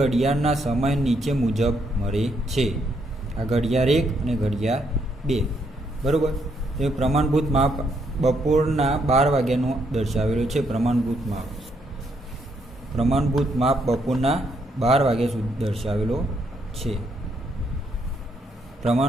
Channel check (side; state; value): both; normal; correlation 0.74